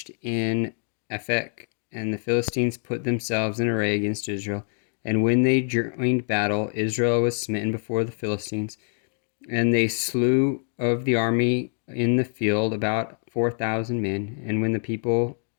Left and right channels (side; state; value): right; silent; 59 dB below the other